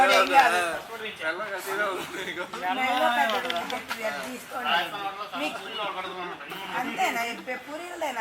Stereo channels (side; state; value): both; identical; correlation 1.00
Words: ఏం కాదు, తీసుకోండి. అంతేనా పూరీలదేనా